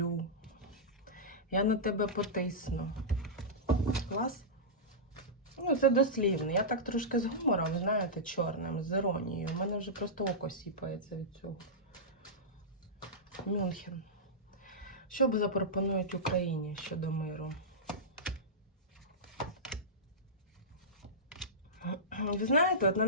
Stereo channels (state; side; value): normal; both; correlation -0.13